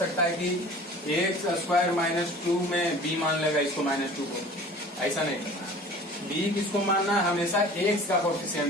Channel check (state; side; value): normal; both; correlation 0.43